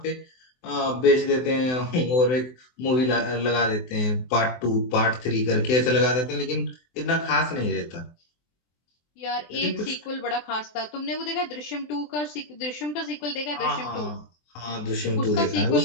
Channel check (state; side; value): late; right; 24 ms